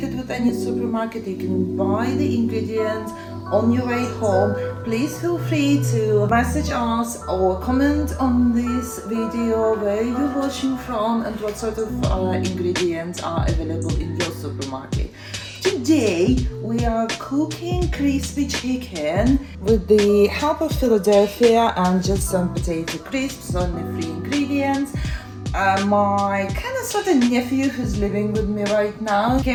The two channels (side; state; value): both; identical; correlation 1.00